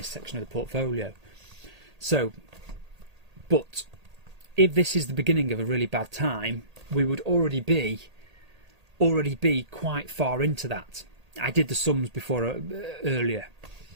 section of the portfolio. So, but if this is the beginning of a really bad time, we would already be quite far into that. I did the sums before earlier.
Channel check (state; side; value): late; left; 1.8 ms